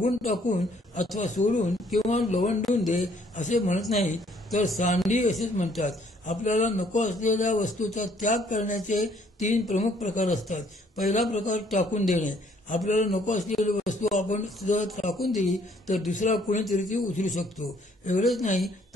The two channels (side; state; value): both; normal; correlation 0.64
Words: टाकून अथवा सोडून किंवा लवंडून दे असे म्हणत नाही, तर सांडी असेच म्हणतात. आपल्याला नको असलेल्या वस्तूचा त्याग करण्याचे 3 प्रमुख प्रकार असतात. पहिला प्रकार टाकून देणे. आपल्याला नको असलेली वस्तू आपण जर टाकून दिली तर दुसरा कोणीतरी ती उचलू शकतो. एवढेच नाही